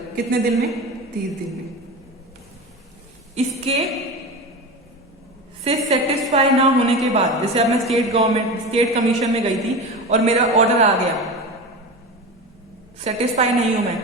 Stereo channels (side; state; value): both; normal; correlation 0.26